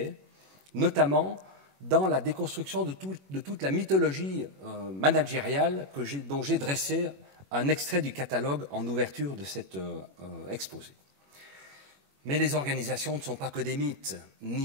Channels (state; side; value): late; left; 21 ms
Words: notamment dans la déconstruction de toute la mythologie managériale dont j'ai dressé un extrait du catalogue en ouverture de cet exposé. Mais les organisations ne sont pas que des mythes,